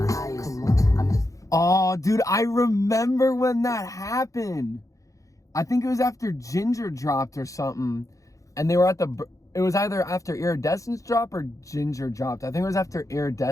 highest. Oh, dude, I remember when that happened. I think it was after Ginger dropped or something, and they were at it was either after Iridescence dropped or Ginger dropped. I think it was after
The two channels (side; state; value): right; late; 0.16 ms